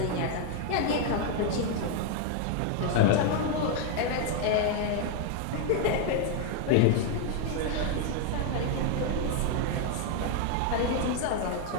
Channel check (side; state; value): both; different; correlation 0.00